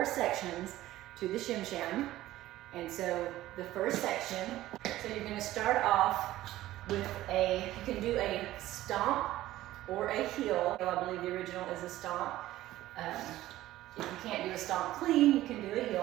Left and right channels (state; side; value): quieter; left; 15.3 dB